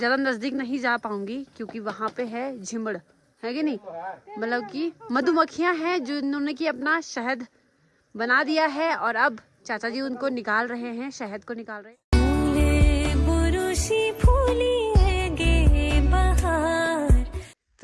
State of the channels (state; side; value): identical; both; correlation 1.00